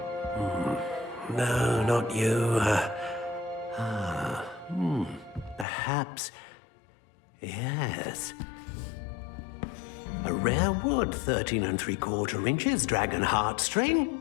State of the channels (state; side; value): drops out; right; at 5.7 s